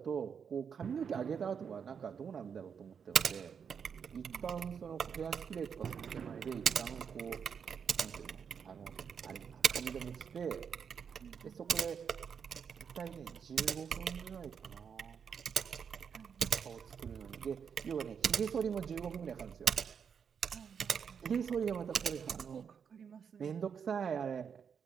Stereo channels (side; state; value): left; quieter; 7.0 dB